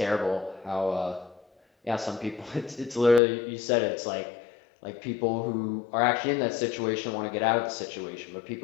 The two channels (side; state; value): right; drops out; at 3.2 s